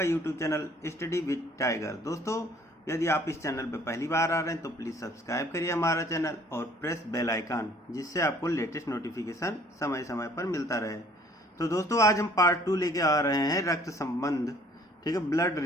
YouTube channel study with tiger. दोस्तों, यदि आप इस चैनल पर पहली बार आ रहे हैं तो प्लीज़ सब्सक्राइब करिए हमारा चैनल और प्रेस बेल आइकन, जिससे आपको लेटेस्ट नोटिफिकेशन समय समय पर मिलता रहे। तो दोस्तों, आज हम पार्ट 2 लेके आ रहे हैं रक्त संबंध, ठीक है, ब्लड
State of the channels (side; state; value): both; normal; correlation 0.57